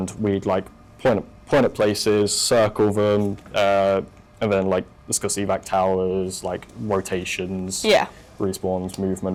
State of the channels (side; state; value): both; identical; correlation 1.00